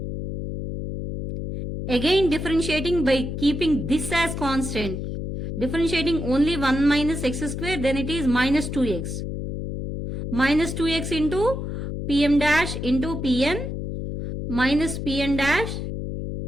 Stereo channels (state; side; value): noise; left; hum, 4 dB below the sound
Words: Again differentiating by keeping this as constant. Differentiating only 1 minus x square, then it is minus 2x. Minus 2x into pm dash into pn minus pn dash